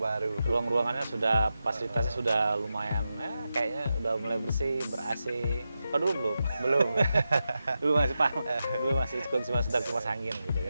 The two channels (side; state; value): both; inverted; correlation -0.90